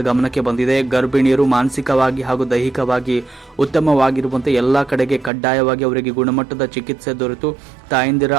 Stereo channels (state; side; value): drops out; left; at 5.3 s